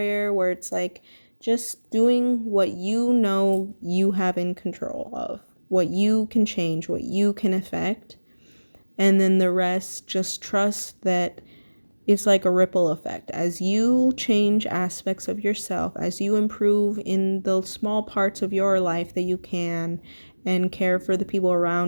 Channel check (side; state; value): both; inverted; correlation -1.00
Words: where it's like just doing what you have in control of, what you can change, what you can affect, and then the rest, just trust that it's like a ripple effect. As you change aspects of yourself, as you improve in the small parts of your life that you can and care for the people